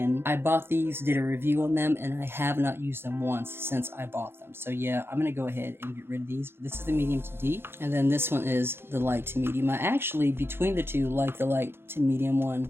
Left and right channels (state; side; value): late; left; 0.11 ms